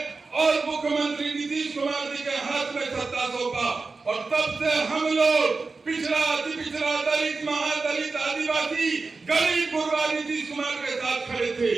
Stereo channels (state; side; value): quieter; left; 4.0 dB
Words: और मुख्यमंत्री नीतीश कुमार जी के हाथ में सत्ता सौंपा और तब से हम लोग पिछड़ा, अति पिछड़ा, दलित, महादलित, आदिवासी, गरीब गुरबा नीतीश कुमार के साथ खड़े थे